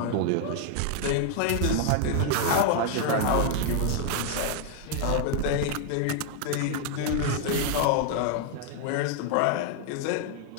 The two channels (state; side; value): different; both; correlation 0.00